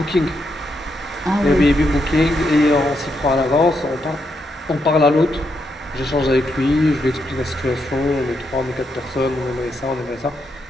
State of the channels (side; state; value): both; normal; correlation 0.80